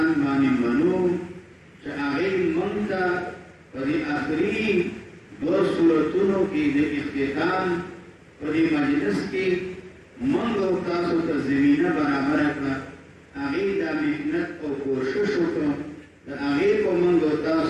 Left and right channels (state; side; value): identical; both; correlation 1.00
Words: باندې منو چې هغې موږ ته په دې آخري دوه صورتونو کې د اختتام په دې مجلس کې موږ او تاسو ته زمینه برابره کړه هغې دا محنت او کوشش وکړو د هغې په موږ او